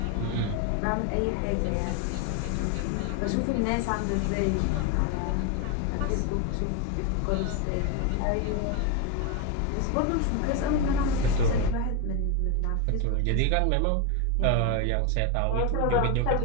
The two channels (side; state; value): both; different; correlation 0.02